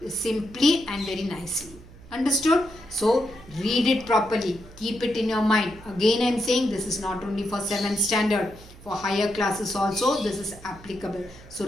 simply and very nicely. Understood? So, read it properly. Keep it in your mind. Again, I am saying this is not only for 7th standard. For higher classes also, this is applicable. So,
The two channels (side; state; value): right; noise; hum, 20 dB below the sound